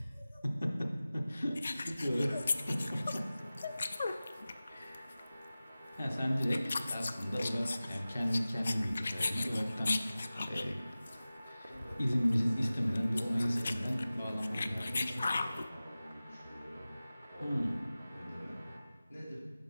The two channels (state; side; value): inverted; both; correlation -0.97